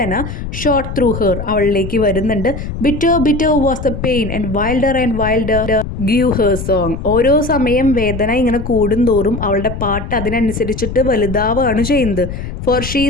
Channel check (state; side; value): noise; left; rumble, 7 dB below the sound